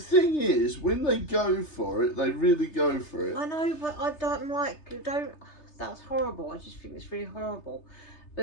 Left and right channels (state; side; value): late; right; 3.3 ms